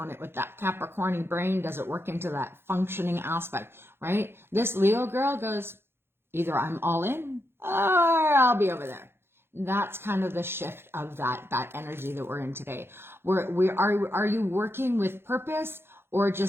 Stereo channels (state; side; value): late; left; 0.11 ms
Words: it with that Capricorn brain. Does it work into that functioning aspect, right? This Leo girl goes, either I'm all in or I'll be over there. That's kind of the shift of that energy that we're in today. Are you working with purpose or